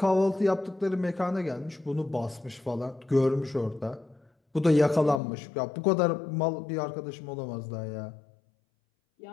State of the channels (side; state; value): right; drops out; at 5.2 s